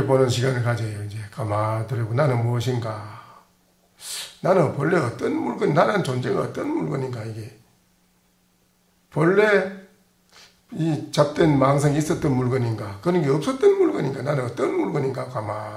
시간을 가져요. 이제 가만히 돌이고 나는 무엇인가? 나는 본래 어떤 물건, 나라는 존재가 어떤 물건인가 이게. 본래 이 잡된 망상이 있었던 물건인가? 그런 게 없었던 물건인가? 나는 어떤 물건인가?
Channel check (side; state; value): both; identical; correlation 1.00